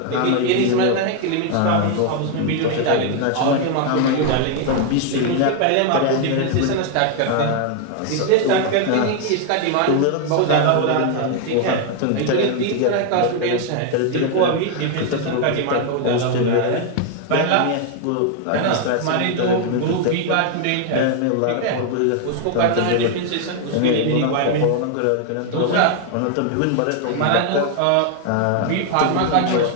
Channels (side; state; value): both; different; correlation 0.00